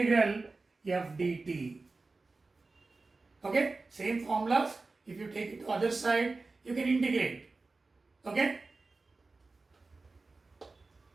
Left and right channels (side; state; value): left; quieter; 3.7 dB